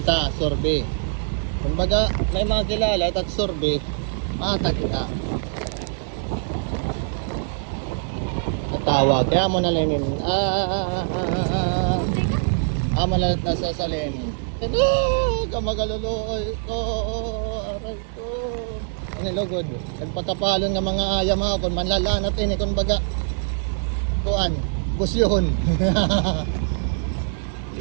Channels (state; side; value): silent; left; digital silence